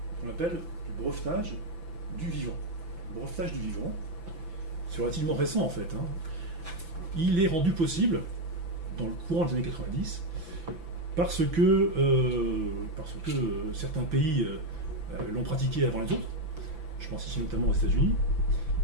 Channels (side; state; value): left; late; 5.9 ms